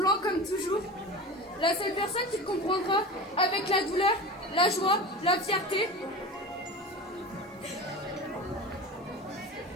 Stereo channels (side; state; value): both; normal; correlation 0.31